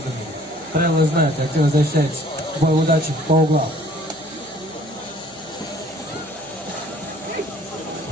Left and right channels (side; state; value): right; noise; hum, 26 dB below the sound